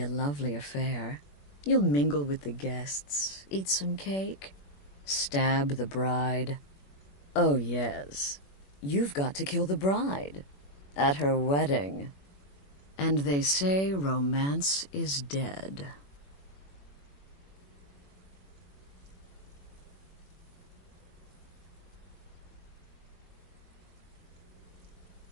a lovely affair. You'll mingle with the guests, eat some cake, stab the bride. Oh, yes. You've got to kill the bride. At her wedding. And they say romance is dead.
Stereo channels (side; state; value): right; late; 21 ms